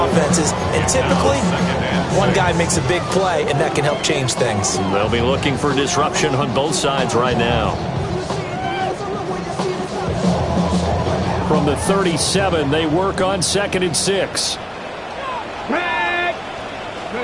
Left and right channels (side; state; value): both; identical; correlation 1.00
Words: And typically, one guy makes a big play, and that can help change things. They'll be looking for disruption on both sides right now. From the 37, they work on 2nd and 6.